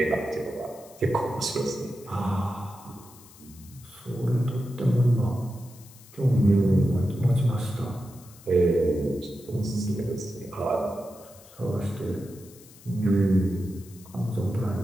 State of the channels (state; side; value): noise; left; hiss, 22 dB below the sound